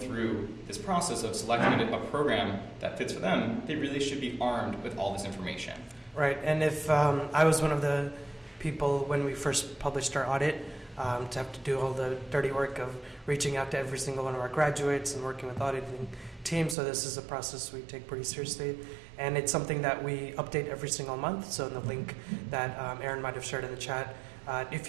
through this process of selecting a program that fits for them, they really should be armed with all this information. Right, and if I was one of the people when we first published our audit, to have to do all the dirty work of reaching out to every single one of our graduates and working with auditing teams. So this is a process we take pretty seriously. And it's something that we update every single month. So in the link that Aaron might have shared in the chat, if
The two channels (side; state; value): left; drops out; at 16.8 s